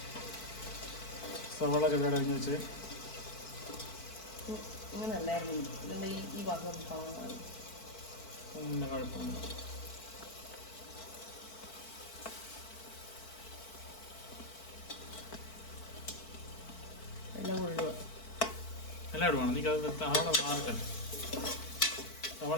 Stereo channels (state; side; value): late; right; 4.5 ms